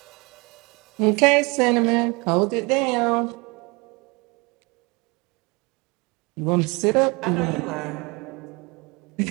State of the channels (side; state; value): left; quieter; 27.8 dB